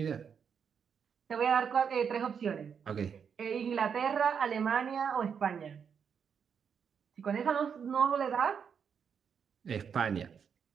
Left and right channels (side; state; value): left; quieter; 7.0 dB